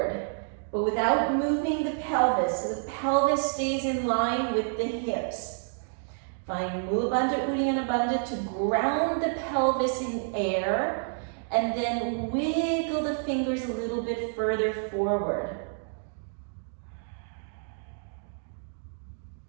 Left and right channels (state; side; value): silent; left; digital silence